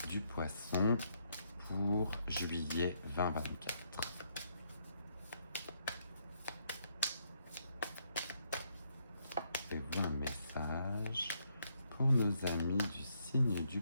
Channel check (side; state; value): both; inverted; correlation -0.75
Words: du poisson pour juillet 2024. Avez-vous un message pour nos amis du signe du